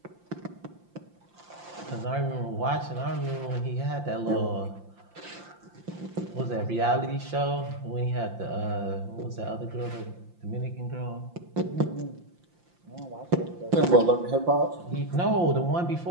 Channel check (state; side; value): late; left; 5.8 ms